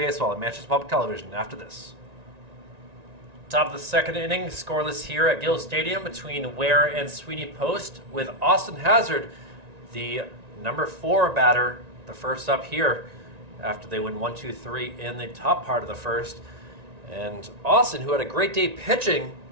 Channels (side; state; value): left; late; 1.9 ms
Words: at Manchester Public Television after this. Top of the 2nd inning, scoreless here at Gill Stadium between Weare and Sweeney Post, with Austin Hazard, the number 4 batter, the first up here after they win 1-2-3 in the top part of the first. And Austin, who had a great day pitching,